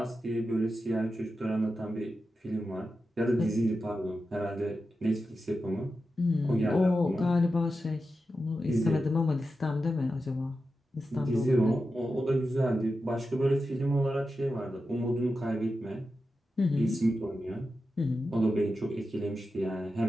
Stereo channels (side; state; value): both; normal; correlation 0.90